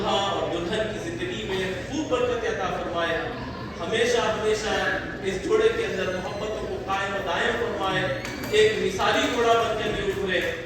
اور دلہن کی زندگی میں خوب برکت عطا فرمائے. ہمیشہ ہمیشہ اس جوڑے کے اندر محبتوں کو قائم و دائم فرمائے. ایک مثالی جوڑا بن کر یہ ابھرے.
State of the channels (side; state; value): both; identical; correlation 1.00